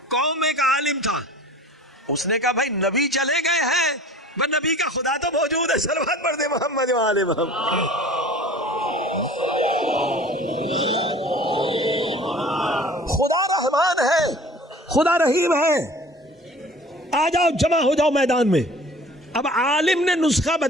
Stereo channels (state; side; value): normal; both; correlation 0.45